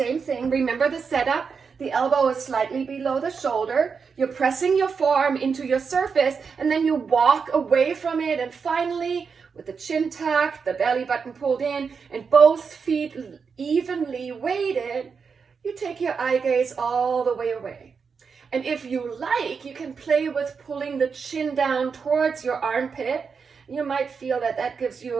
thing, remember the setup. The elbow is slightly below the shoulder. You're pressing your forearm into your surface, and then you walk away from it, and finally, with the chin tucked, the belly button pulled in, and both feet evenly weighted, you take your eye gaze all the way away. And if you like, you can play with pulling the chin down towards your armpit. You might feel that that gives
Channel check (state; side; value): quieter; left; 5.7 dB